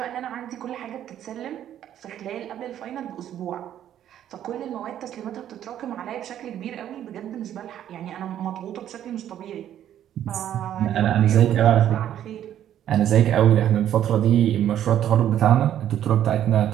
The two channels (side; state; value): left; quieter; 11.0 dB